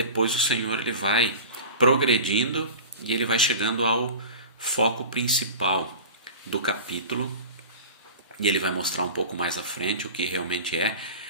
o Senhor ele vai progredindo e ele vai chegando ao foco principal do capítulo e ele vai mostrar um pouco mais à frente o que realmente é,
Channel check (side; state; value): both; inverted; correlation -0.35